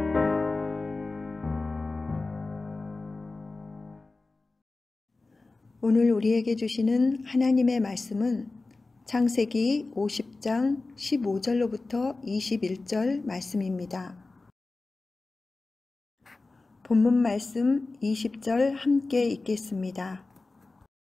오늘 우리에게 주시는 하나님의 말씀은 창세기 50장 15절로부터 21절 말씀입니다. 본문 말씀 20절 함께 읽겠습니다.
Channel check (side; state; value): right; quieter; 3.5 dB